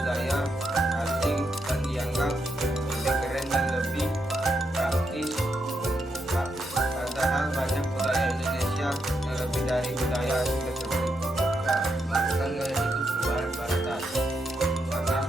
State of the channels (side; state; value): both; normal; correlation 0.81